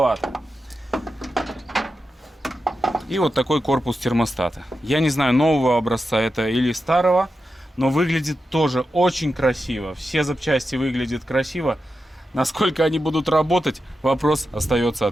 И вот такой корпус термостата. Я не знаю, нового образца это или старого, но выглядит тоже очень красиво. Все запчасти выглядят красиво. Насколько они будут работать, вопрос остается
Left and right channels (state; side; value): normal; both; correlation 0.89